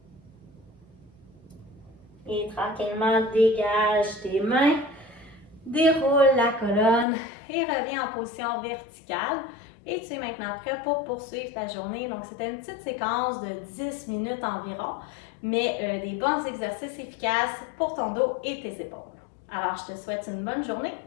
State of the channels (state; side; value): drops out; right; at 7.1 s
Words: Et tranquillement, dégage tes mains, déroule la colonne et reviens en position verticale. Et tu es maintenant prêt pour poursuivre ta journée. Donc, c'était une petite séquence de 10 minutes environ, mais des bons exercices efficaces pour ton dos et tes épaules. Alors, je te souhaite une bonne journée